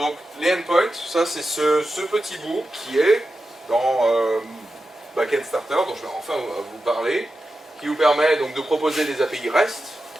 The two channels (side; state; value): both; normal; correlation 0.91